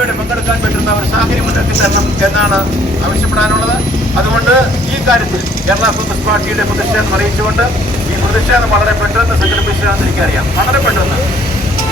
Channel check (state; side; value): normal; both; correlation 0.61